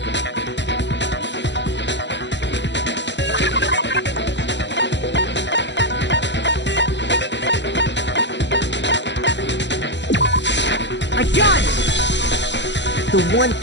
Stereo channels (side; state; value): right; late; 0.52 ms